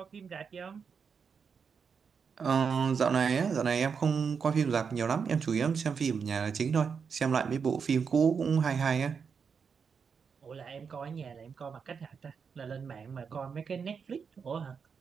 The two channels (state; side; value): quieter; left; 6.1 dB